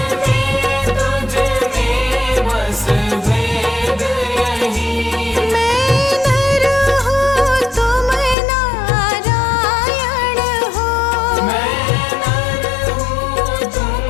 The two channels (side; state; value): right; drops out; at 8.3 s